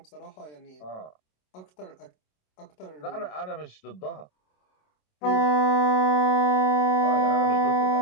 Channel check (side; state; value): right; late; 27 ms